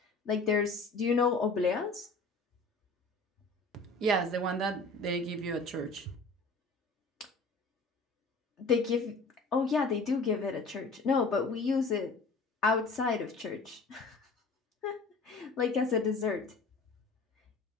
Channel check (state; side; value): quieter; right; 3.4 dB